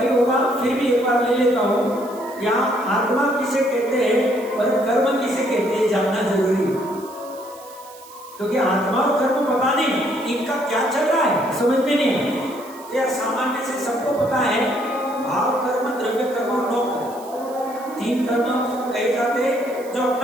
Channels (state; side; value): noise; right; hiss, 21 dB below the sound